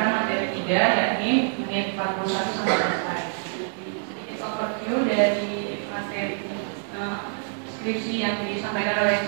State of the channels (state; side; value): silent; left; 61 dB below the other